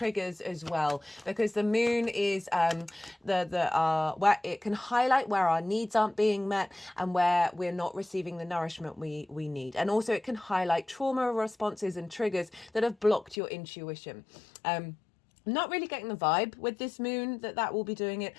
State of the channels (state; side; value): drops out; right; at 13.4 s